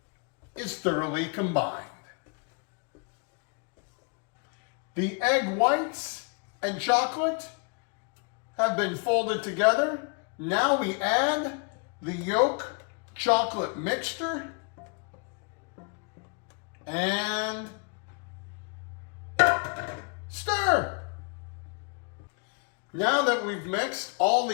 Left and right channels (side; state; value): right; quieter; 36.0 dB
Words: is thoroughly combined. The egg whites and chocolate have been folded together. Now we add the yolk chocolate mixture and stir. Now that we've mixed all